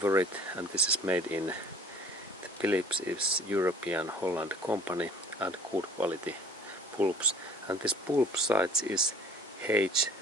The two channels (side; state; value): both; normal; correlation 0.51